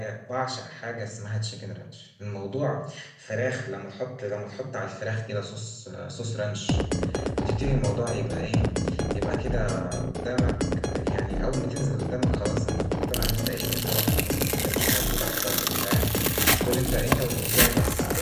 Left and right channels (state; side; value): identical; both; correlation 1.00